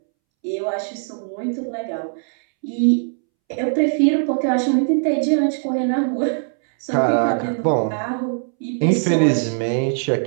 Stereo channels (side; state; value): left; silent; 65 dB below the other